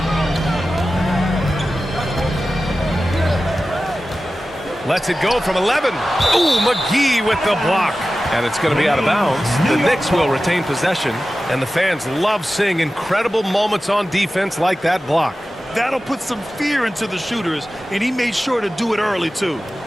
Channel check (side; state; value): both; normal; correlation 0.94